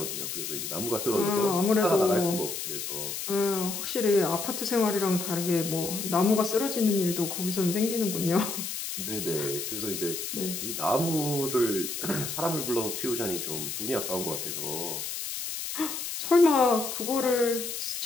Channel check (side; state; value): left; noise; hiss, 5 dB below the sound